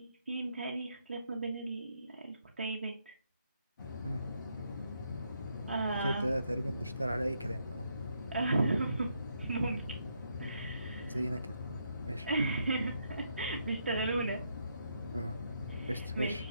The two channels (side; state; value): both; inverted; correlation -0.77